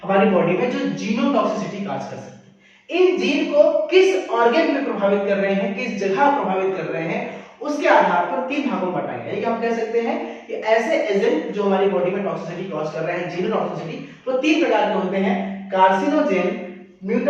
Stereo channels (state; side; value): identical; both; correlation 1.00